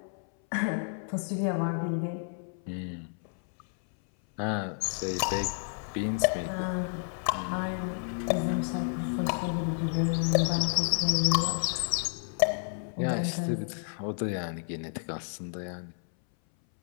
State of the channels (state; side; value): silent; right; 57 dB below the other